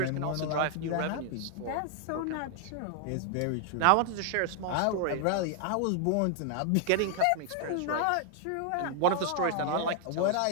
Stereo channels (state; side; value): different; both; correlation 0.00